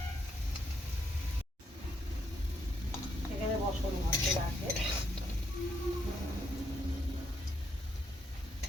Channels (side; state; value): both; normal; correlation 0.76